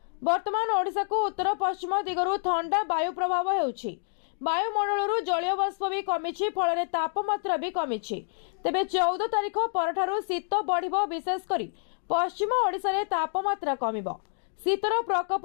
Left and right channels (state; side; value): silent; right; digital silence